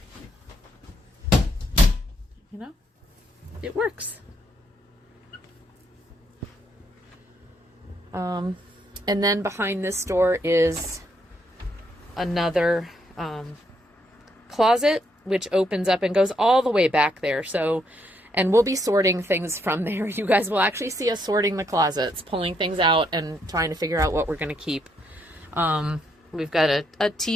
you know, it works. And then behind this door is another closet, which opens up and goes all the way back there. So, and we'll be sorting things from there. You guys will actually see us sorting the closets, pulling things out and trying to figure out what we're going to keep. We've got a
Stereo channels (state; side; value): normal; both; correlation 0.75